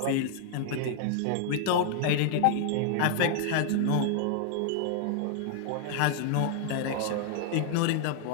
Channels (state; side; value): different; both; correlation 0.00